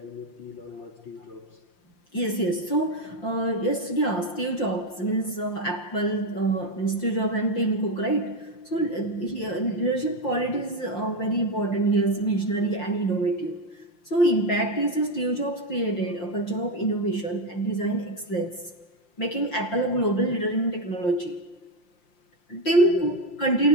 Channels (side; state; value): right; late; 5.7 ms